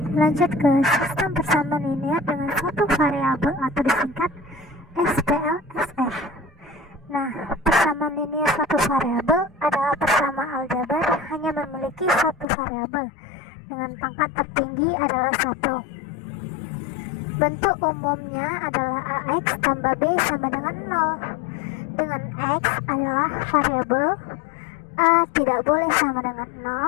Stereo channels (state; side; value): drops out; right; at 12.5 s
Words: lanjut ke sistem persamaan linear dengan satu variabel atau disingkat SPLSF. Nah, persamaan linear satu variabel adalah persamaan aljabar hanya memiliki satu variabel dengan pangkat tertinggi adalah 1. Bentuk umumnya adalah AX tambah B sama dengan 0. Dengan X adalah variabel, A tidak boleh sama dengan